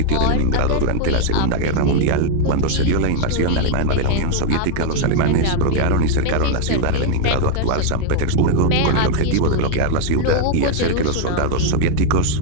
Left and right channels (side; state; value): both; different; correlation 0.00